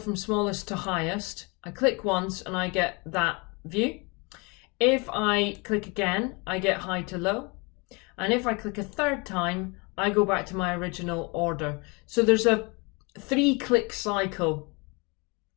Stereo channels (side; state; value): right; quieter; 29.4 dB